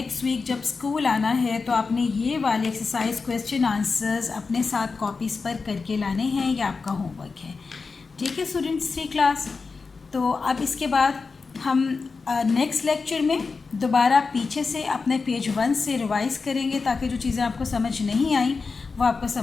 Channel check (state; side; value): quieter; right; 4.5 dB